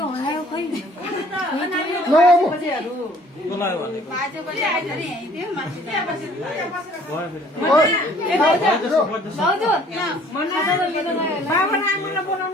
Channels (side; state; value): both; normal; correlation 0.56